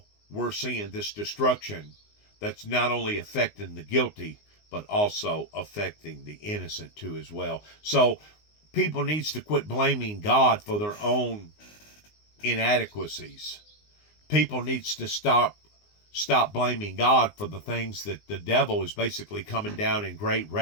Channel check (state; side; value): late; right; 19 ms